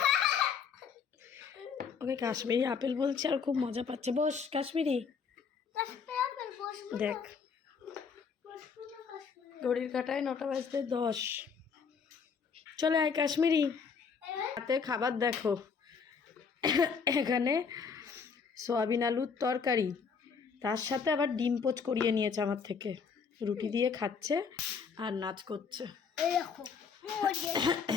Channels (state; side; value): quieter; right; 6.0 dB